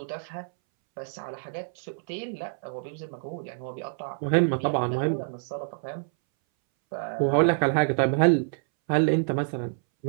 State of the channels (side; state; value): left; silent; 60 dB below the other